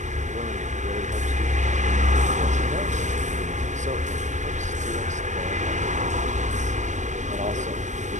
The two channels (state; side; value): late; left; 0.34 ms